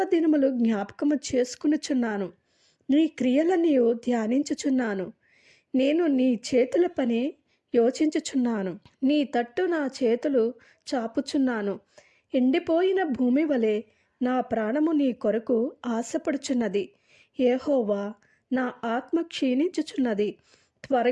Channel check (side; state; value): both; identical; correlation 1.00